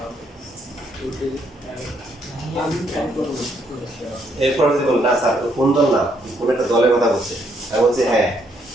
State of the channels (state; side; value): normal; both; correlation 0.72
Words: এরপর যদি বল না স্যার কোন দল না কোন একটা দলের কথা বলছে আমি বলছি হ্যাঁ